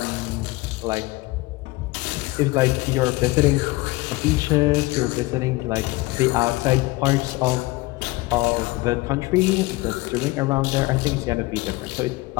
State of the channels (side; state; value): right; quieter; 21.4 dB